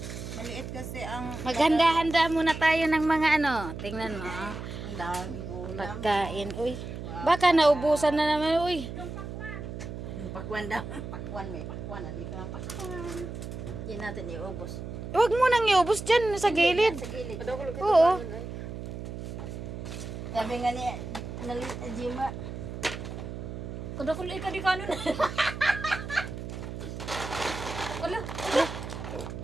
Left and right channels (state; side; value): noise; right; hum, 8 dB below the sound